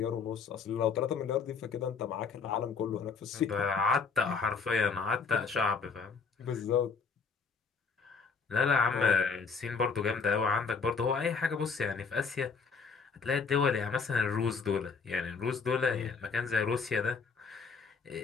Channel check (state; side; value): quieter; right; 5.2 dB